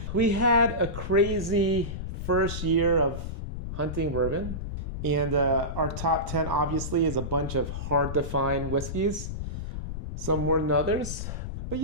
We had a crazy first year of hunting bourbon. And our top 10 obviously is a bunch of hard to find whiskeys. Some more than others. But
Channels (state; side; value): noise; left; rumble, 6 dB below the sound